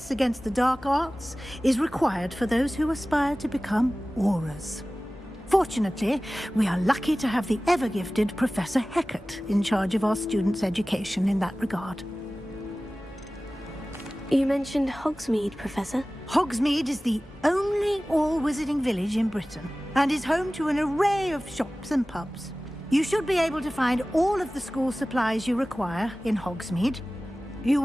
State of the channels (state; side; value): normal; both; correlation 0.97